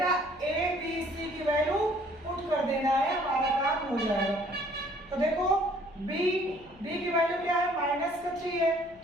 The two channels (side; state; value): left; noise; hum, 26 dB below the sound